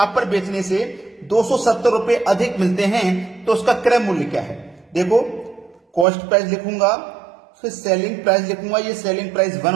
पर बेचने से 270 रुपए अधिक मिलते हैं, तो उसका क्रय मूल्य क्या है? देखो, कॉस्ट प्राइस लिखूंगा, फिर सेलिंग प्राइस लिखूंगा। ये सेलिंग प्राइस 1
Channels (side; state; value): left; drops out; at 6.1 s